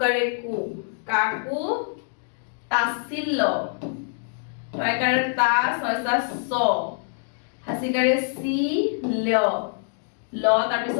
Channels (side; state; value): right; silent; digital silence